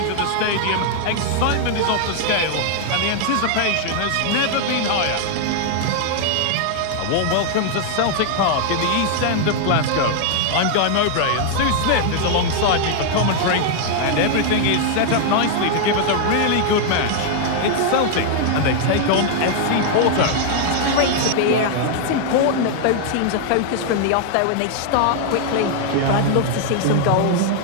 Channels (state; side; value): different; both; correlation 0.00